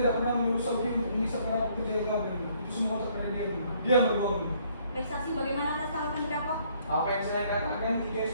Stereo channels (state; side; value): inverted; both; correlation -0.65